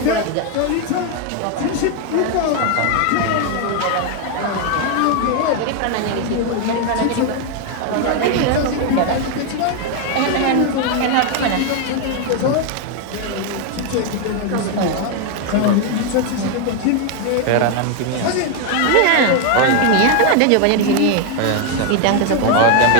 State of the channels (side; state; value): both; different; correlation 0.01